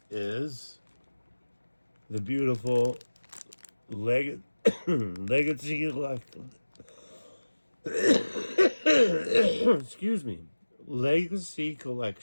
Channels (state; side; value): inverted; both; correlation -1.00